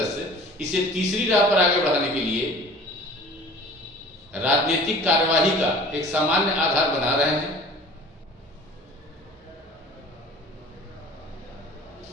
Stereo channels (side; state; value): both; normal; correlation 0.44